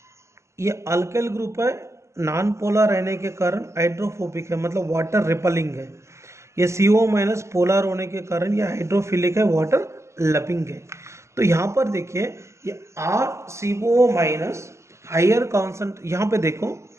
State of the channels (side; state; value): left; late; 0.13 ms